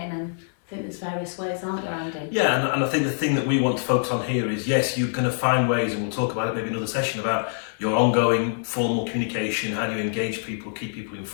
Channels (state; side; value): silent; right; 62 dB below the other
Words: and I think there's various ways, aren't there, Andy? Yeah, and I think the thing that we want to focus on here is, yes, you're going to find ways, and we'll talk about it maybe another session, about your ongoing formal communication, how do you engage people, keep people